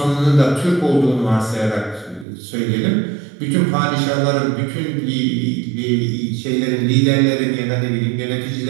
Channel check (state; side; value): drops out; left; at 2.2 s